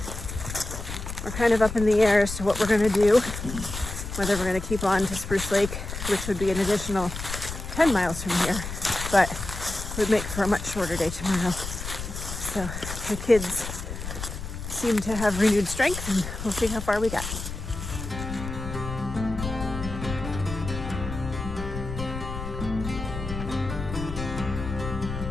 we're kind of up in the air as to what we're going to do, whether we're going to keep on to Spruce Lake, which would be an additional 10 miles from here, but would make for a much shorter day tomorrow. So the kids seem to have renewed strength, and we'll see how far we get.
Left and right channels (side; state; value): left; noise; rumble, 8 dB below the sound